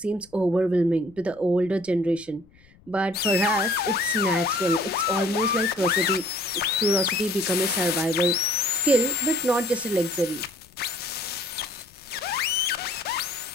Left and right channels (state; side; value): noise; left; rumble, 28 dB below the sound